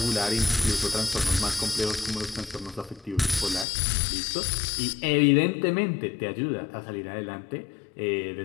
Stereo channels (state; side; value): drops out; right; at 3.7 s